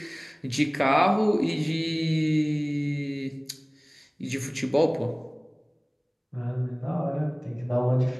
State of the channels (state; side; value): identical; both; correlation 1.00